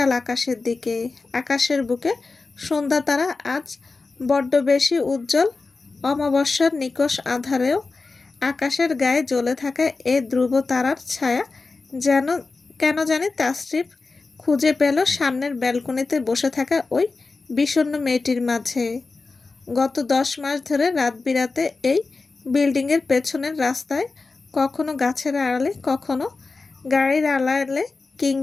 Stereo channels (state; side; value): quieter; right; 3.9 dB